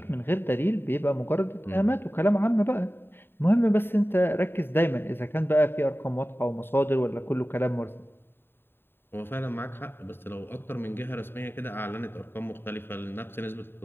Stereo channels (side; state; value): right; late; 0.11 ms